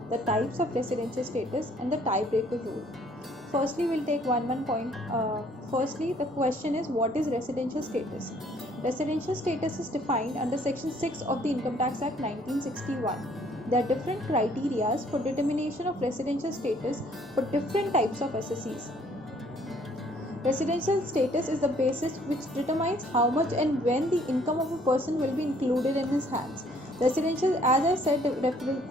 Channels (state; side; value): normal; both; correlation 0.61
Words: the types of residential status, and the tiebreaker rule. Firstly, we'll take one point. Firstly, the question is, what is residential status? Residential status is defined under Section 6 of the Income Tax Act 1961. There are different criteria for determination of residential status for different types of SSEs. Residential status is the basis which determines how much and when the income of a person will be included in his hands. Residential, as I said,